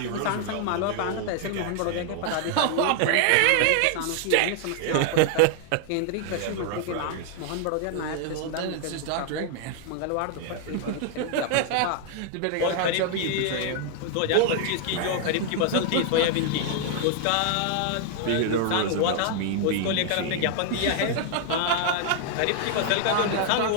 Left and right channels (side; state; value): both; different; correlation 0.00